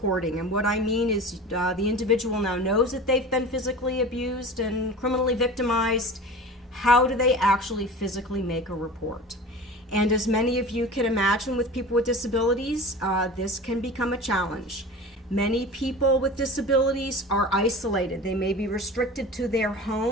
And what I mean is the individual now knows that they've been physically abused and criminally victimized. How do they actually physically make a report? And as many of you can imagine with people with disabilities, this can become a challenge. Many people with disabilities are isolated. They may be restricted to their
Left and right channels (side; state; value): both; normal; correlation 0.35